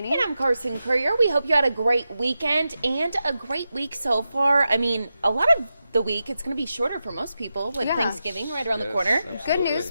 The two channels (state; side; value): inverted; both; correlation -0.90